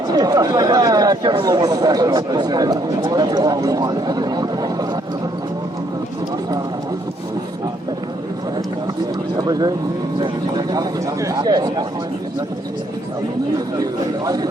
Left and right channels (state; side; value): normal; both; correlation 0.69